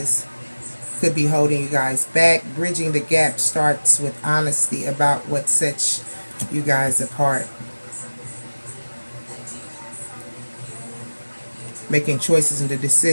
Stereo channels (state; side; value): inverted; both; correlation -1.00